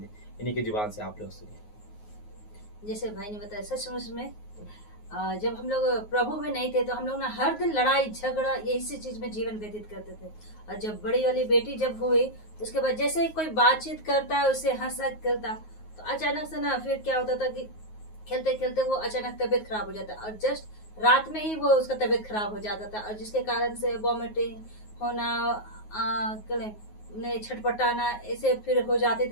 की जुबान से आप लोग सुनिए। जैसे भाई ने बताया, सचमुच में जब हम लोग प्रभु में नहीं थे तो हम लोग ना हर दिन लड़ाई झगड़ा इसी चीज में जीवन व्यतीत करते थे। और जब बड़ी वाली बेटी जब हुई, उसके बाद जैसे ही कोई बातचीत करता है उससे हंसा करता, तो अचानक से ना फिर क्या होता था कि खेलते खेलते वो अचानक तबीयत खराब हो जाता और जस्ट रात में ही वो उसका तबीयत खराब हो जाता था। और जिसके कारण से वॉमिटिंग होना, छटपटाना ऐसे फिर हो जाते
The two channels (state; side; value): late; right; 9.4 ms